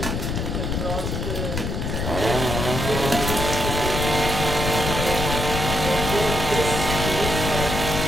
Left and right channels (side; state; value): left; noise; rumble, 2 dB below the sound